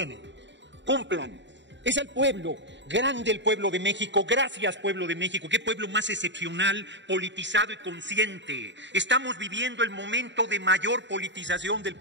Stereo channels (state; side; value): late; left; 0.52 ms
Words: Cumplan. Es el pueblo, grande el pueblo de México. Gracias, pueblo de México. Qué pueblo más excepcional, politizado y consciente. Estamos viviendo el momento de mayor politización del